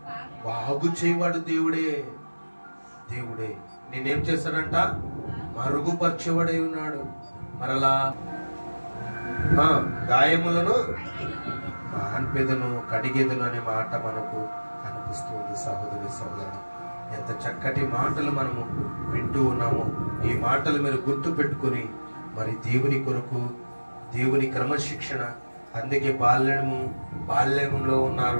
బాగు చేయవాడు దేవుడే. దేవుడే నేనేం చేస్తాడంట? మరుగుపరచబడై ఉన్నాడు. మరలా గాయములను మాన్పెదను కడిగేదను అనే మాట మనకు కనిపిస్తుంది సహోదరి సహోదరుడు. ఎంత చక్కటి మాటలు మనము వింటూ ఉన్నామో ఈ మాటలు మీరు గుర్తు పెట్టుకుని మరి దేవుని కొరకు, దేవుని క్రమశిక్షణ. అందుకే బాల్యంలో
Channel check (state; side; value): inverted; both; correlation -1.00